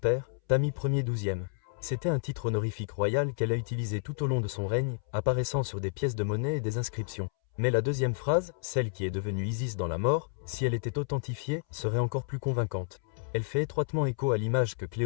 Tami Ier XIIe. C'était un titre honorifique royal qu'elle a utilisé tout au long de son règne, apparaissant sur des pièces de monnaie et des inscriptions. Mais la deuxième phrase, celle qui est devenue Isis dans la mort, si elle était authentifiée, serait encore plus convaincante. Elle fait étroitement écho à l'image que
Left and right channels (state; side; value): silent; right; 57 dB below the other